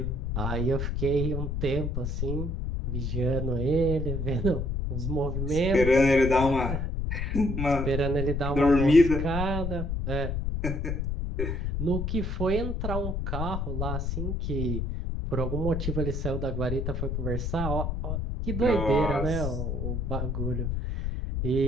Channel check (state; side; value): noise; left; rumble, 1 dB below the sound